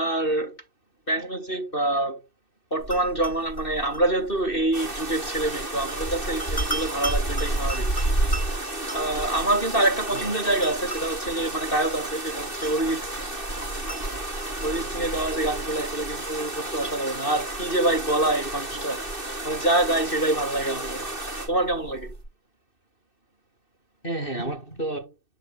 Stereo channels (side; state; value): right; late; 2.6 ms